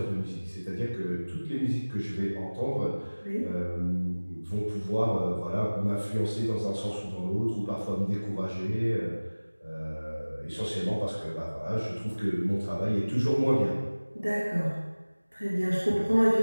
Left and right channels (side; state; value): both; inverted; correlation -1.00